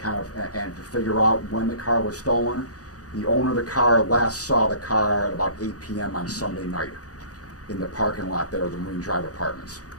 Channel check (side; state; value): right; late; 0.67 ms